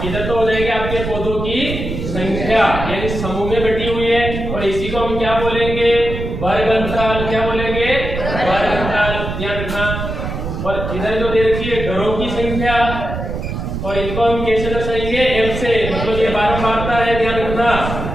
इधर तो हो जाएगी आपके पौधों की संख्या, यानी समूह में बटी हुई है, और इसी को हम क्या बोलेंगे, वर्ग अंतराल। क्या बोलेंगे, वर्ग अंतराल, ध्यान रखना। और इधर जो दे रखी है घरों की संख्या, और इनको हम कैसे दर्शाएंगे, f से, मतलब ये बारंबारता है, ध्यान रखना।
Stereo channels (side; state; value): right; noise; rumble, 5 dB below the sound